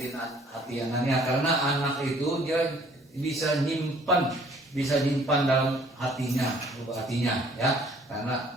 hati anaknya, karena anak itu dia bisa nyimpan dalam hatinya, ya.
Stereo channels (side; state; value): both; normal; correlation 0.58